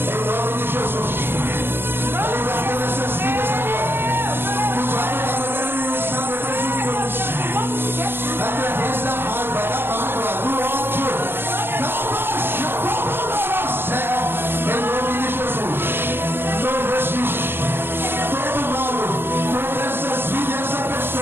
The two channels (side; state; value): left; late; 0.10 ms